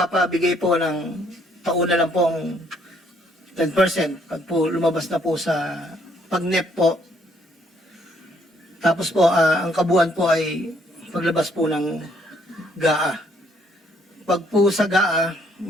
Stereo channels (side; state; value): both; normal; correlation 0.67